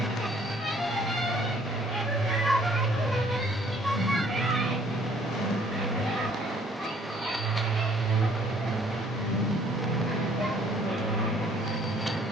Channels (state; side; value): normal; both; correlation 0.60